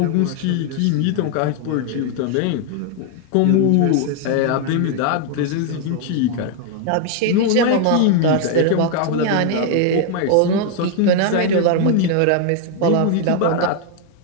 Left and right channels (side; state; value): both; different; correlation 0.00